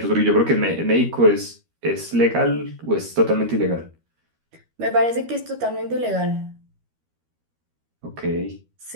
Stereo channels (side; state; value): left; late; 13 ms